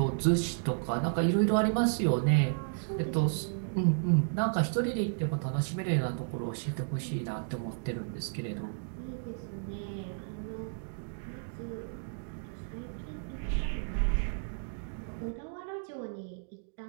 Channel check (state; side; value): silent; left; digital silence